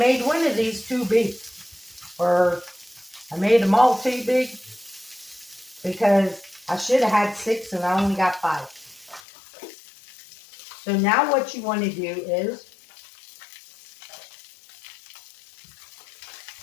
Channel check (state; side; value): drops out; right; at 9.2 s